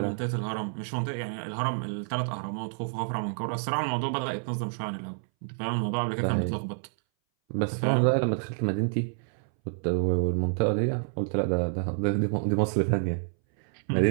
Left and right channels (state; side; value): silent; left; 59 dB below the other